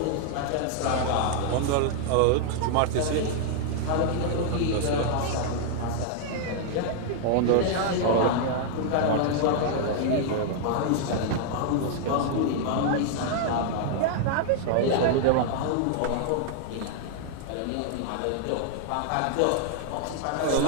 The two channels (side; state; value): both; different; correlation 0.00